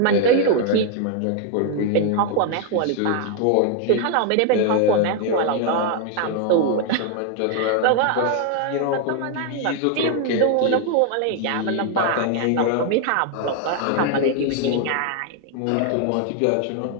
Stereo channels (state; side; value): different; both; correlation 0.00